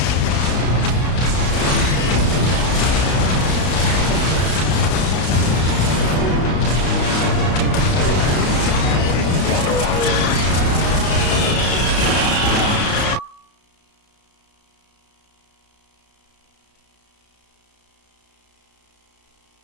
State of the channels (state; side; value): late; right; 32 ms